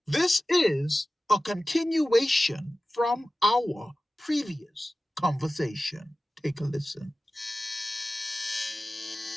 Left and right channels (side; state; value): both; normal; correlation 0.96